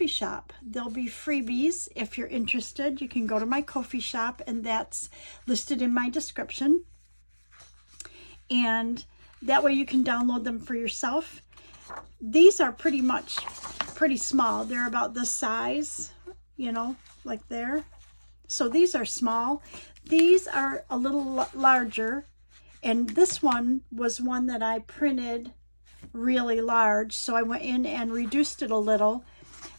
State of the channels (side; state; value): both; inverted; correlation -1.00